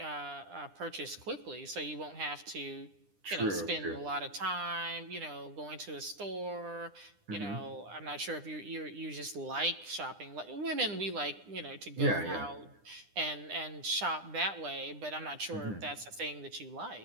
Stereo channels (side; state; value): left; late; 9.9 ms